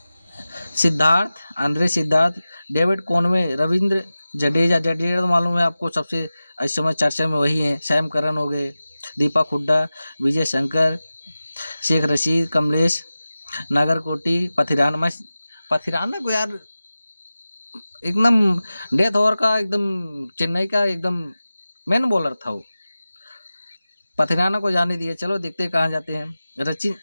Andre Siddharth, David Conway, Ravindra Jadeja तो मालूम है आपको, सबसे इस समय चर्चा में वही है। सैम करन हो गए, दीपक हुड्डा, विजय शंकर, शेख रशीद, कमलेश, नागरकोटी, पथिराना को यार एकदम डेथ ओवर का, एकदम चेन्नई का एकदम मेन बॉलर था वो। पथिराना को जाने दिया, चलो देखते हैं कहाँ जाते हैं।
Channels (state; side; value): inverted; both; correlation -0.96